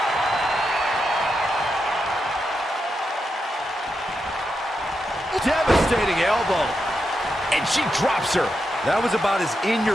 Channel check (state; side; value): normal; both; correlation 0.86